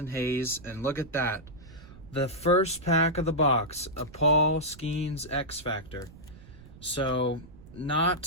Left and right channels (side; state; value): right; noise; rumble, 19 dB below the sound